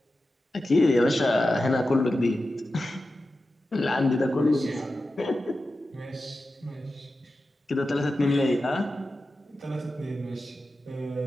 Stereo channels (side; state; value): both; normal; correlation 0.92